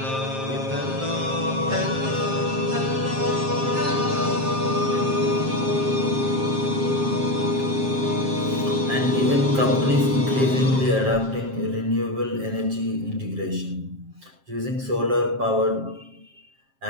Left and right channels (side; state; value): left; late; 7.5 ms